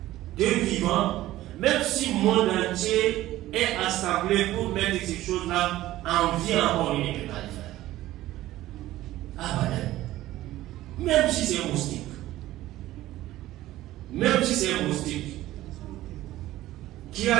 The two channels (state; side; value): quieter; left; 15.4 dB